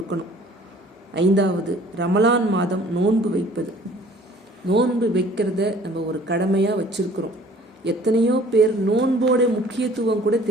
5வது ரமலான் மாதம் நோன்பு வைப்பது. நோன்பு வைக்கிறத நம்ம ஒரு கடமையாக வச்சிருக்கிறோம். எத்தனையோ பேர் நோன்போட முக்கியத்துவம் கூட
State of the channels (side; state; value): both; normal; correlation 0.52